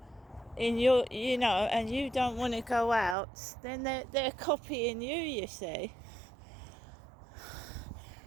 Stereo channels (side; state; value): left; drops out; at 3.2 s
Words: in your, and you don't want to go out, then they're copying you, you see,